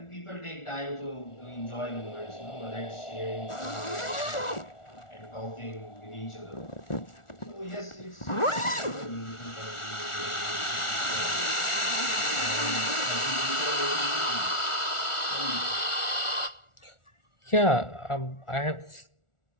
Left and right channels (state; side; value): late; right; 1.4 ms